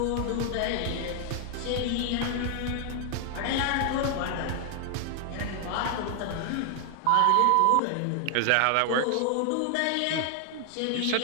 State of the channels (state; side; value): different; both; correlation -0.01